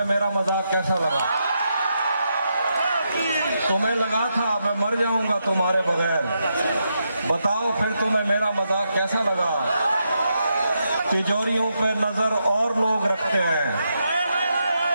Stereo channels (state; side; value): inverted; both; correlation -0.83